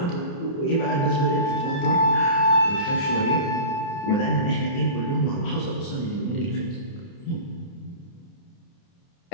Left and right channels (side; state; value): right; late; 29 ms